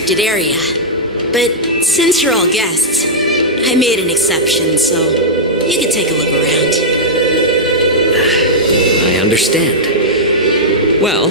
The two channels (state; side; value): normal; both; correlation -0.09